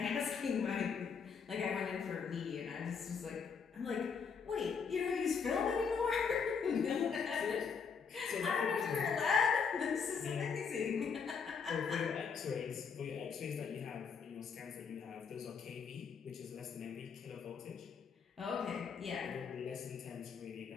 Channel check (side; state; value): right; quieter; 6.0 dB